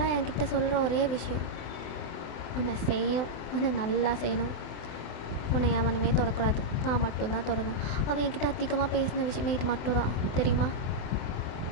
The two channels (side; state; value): right; late; 24 ms